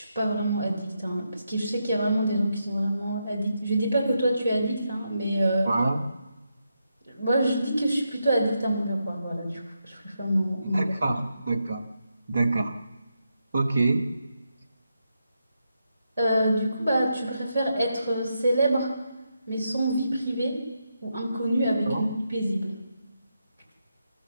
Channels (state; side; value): inverted; both; correlation -0.84